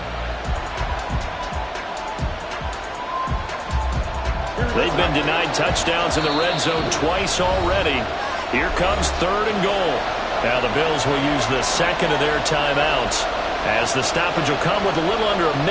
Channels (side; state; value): both; identical; correlation 1.00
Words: They've been denied touchdowns in the red zone twice already. Here comes 3rd and goal. Now the Bills will use the 2nd of their timeouts as the stoppage will come with a little under a